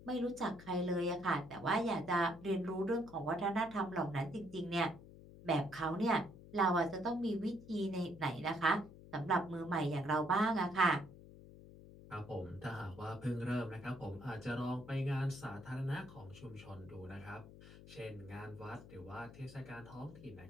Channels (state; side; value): noise; left; hum, 17 dB below the sound